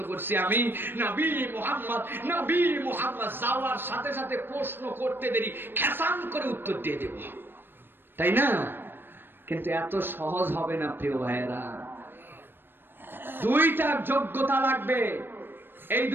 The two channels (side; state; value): left; late; 0.098 ms